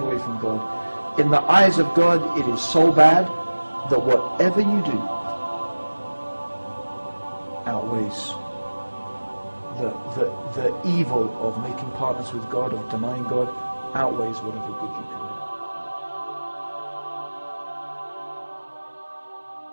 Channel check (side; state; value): both; inverted; correlation -1.00